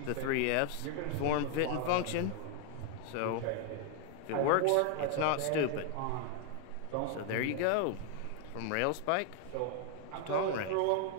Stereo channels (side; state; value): both; different; correlation 0.00